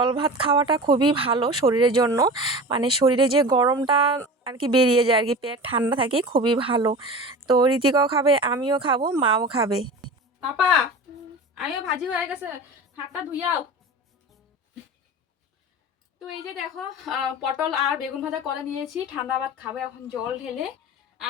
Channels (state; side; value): normal; both; correlation 0.33